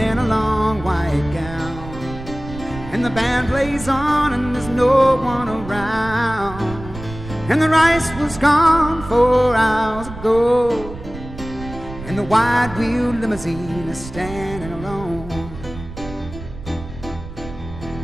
a long white gown, and the band plays on and there's no one around, and the rice was gone 4 hours ago, and the wide-wheeled limousine is standing alone.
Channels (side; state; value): right; noise; rumble, 13 dB below the sound